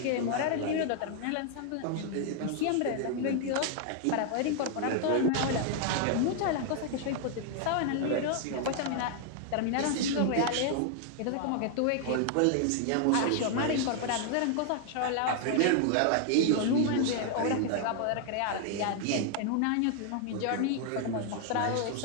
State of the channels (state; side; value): different; both; correlation 0.00